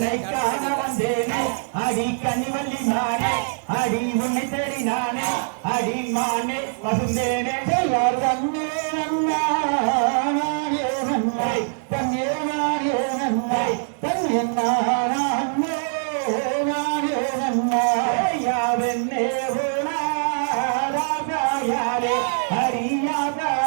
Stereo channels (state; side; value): silent; left; 63 dB below the other